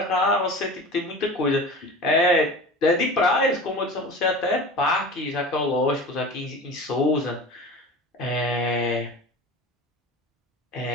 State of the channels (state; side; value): normal; both; correlation 0.35